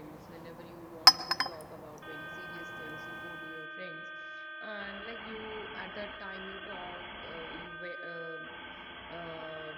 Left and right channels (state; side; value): identical; both; correlation 1.00